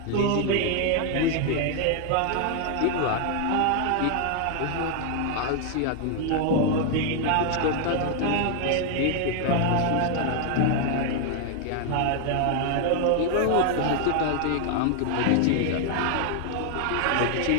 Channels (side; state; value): both; different; correlation 0.00